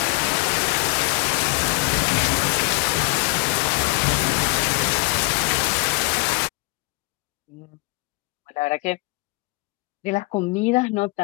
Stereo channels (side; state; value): right; quieter; 27.3 dB